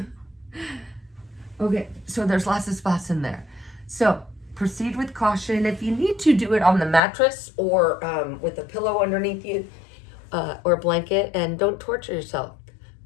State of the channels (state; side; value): drops out; right; at 7.0 s